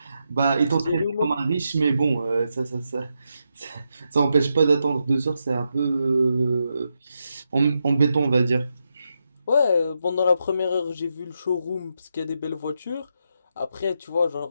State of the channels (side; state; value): both; inverted; correlation -0.84